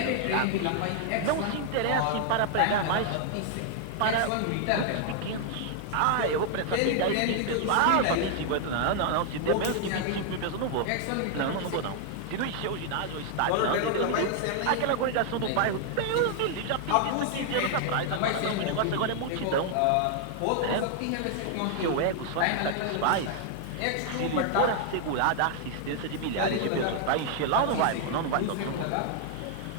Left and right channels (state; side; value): different; both; correlation 0.00